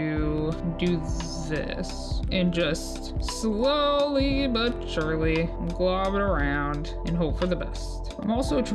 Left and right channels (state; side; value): identical; both; correlation 1.00